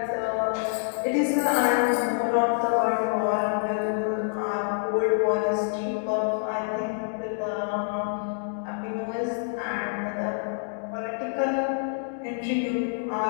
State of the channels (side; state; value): right; silent; digital silence